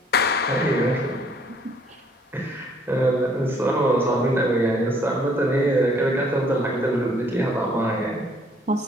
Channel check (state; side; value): normal; both; correlation 0.62